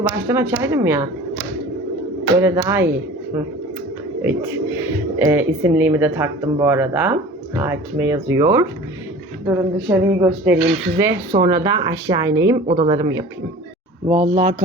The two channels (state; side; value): normal; both; correlation 0.41